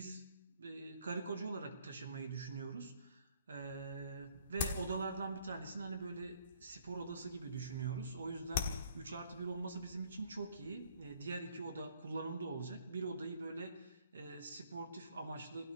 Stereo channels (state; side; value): inverted; both; correlation -0.63